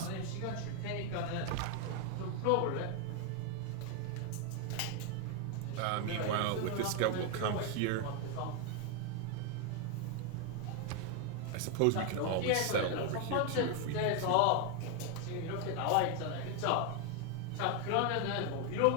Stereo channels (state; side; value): different; both; correlation 0.01